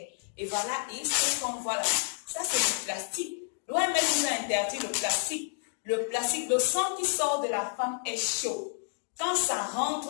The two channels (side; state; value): right; silent; digital silence